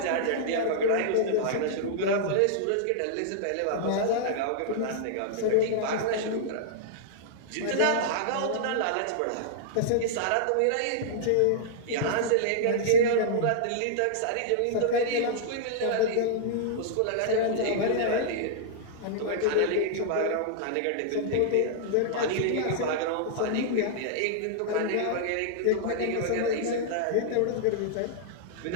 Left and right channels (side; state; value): both; different; correlation -0.02